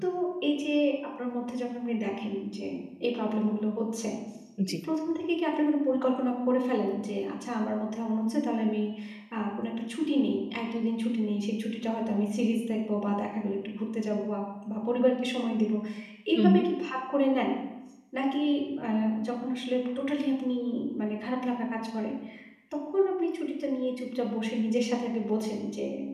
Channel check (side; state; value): both; identical; correlation 1.00